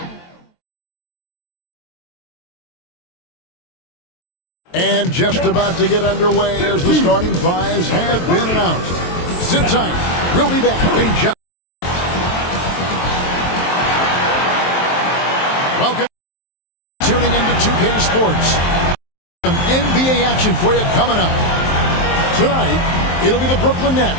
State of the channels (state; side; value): late; right; 23 ms